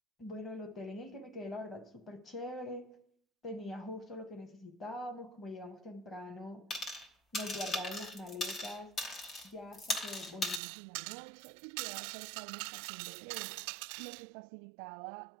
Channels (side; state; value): left; drops out; at 10.6 s